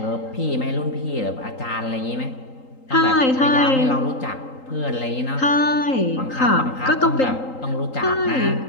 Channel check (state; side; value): late; right; 3.8 ms